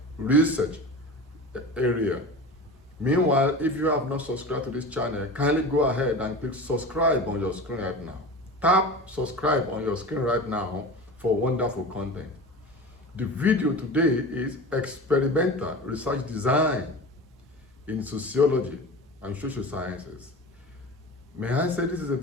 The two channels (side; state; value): both; normal; correlation 0.33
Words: research area. Meanwhile, if you have not subscribed to this channel, kindly go ahead and click subscribe on your screen right now. Tap subscribe on your screen right now for wonderful content. The video today is experimental research design in sociology and social sciences. May I say this is a